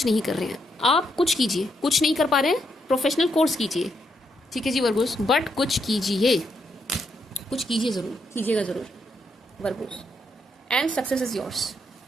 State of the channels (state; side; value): normal; both; correlation 0.78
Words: नहीं कर रहे हैं। आप कुछ कीजिए, कुछ नहीं कर पा रहे हैं, प्रोफेशनल कोर्स कीजिए। ठीक है जी वर्गोस, बट कुछ कीजिए, कुछ कीजिए, ज़रूर कीजिएगा, ज़रूर Virgo's, and success is yours.